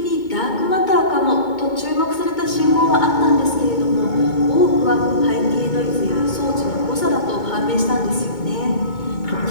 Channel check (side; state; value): right; late; 2.2 ms